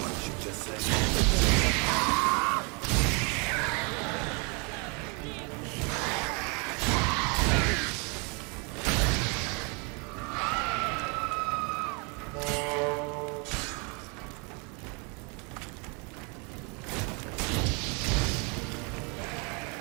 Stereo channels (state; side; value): quieter; left; 32.7 dB